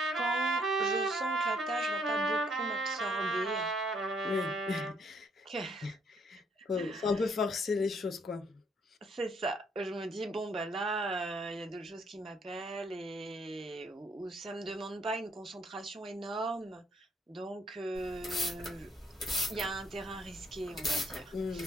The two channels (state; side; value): normal; both; correlation 0.68